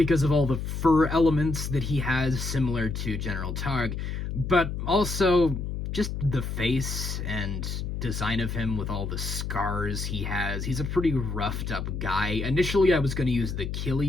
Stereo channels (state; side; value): noise; left; hum, 4 dB below the sound